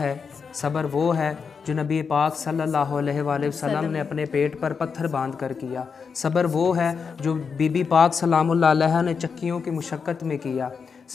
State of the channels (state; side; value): quieter; right; 5.8 dB